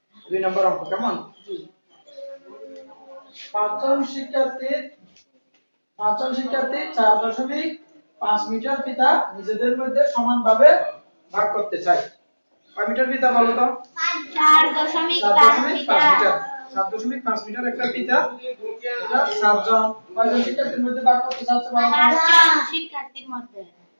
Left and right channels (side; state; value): both; inverted; correlation -1.00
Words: 2 নম্বর অঙ্ক কেমন? পাঁচজন শিক্ষার্থী 4.5 মিটার ফিতা নিজেদের মধ্যে সমানভাবে ভাগ করতে চায়। কয় মিটার ফিতা বলো তো? 4.5 মিটার। 4.5 মিটার একটা ফিতা। এটা সাতজন কয়জন শিক্ষার্থীর মধ্যে ভাগ করতে চাচ্ছে বলো? 5জন শিক্ষার্থীর মধ্যে।